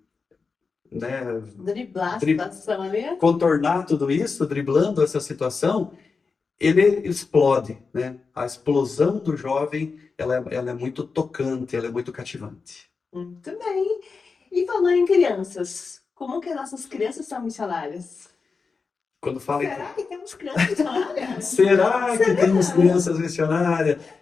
né, Driblar a situação ali. contornar tudo isso, driblando essa situação, ele explode, né? A explosão do jovem, ela é muito tocante, ela é muito cativante. Muito bem. E falando em crianças, como que as nossas crianças são missionárias? Quando fala Será que temos crianças missionárias? será que temos crianças missionárias?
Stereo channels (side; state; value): right; quieter; 4.8 dB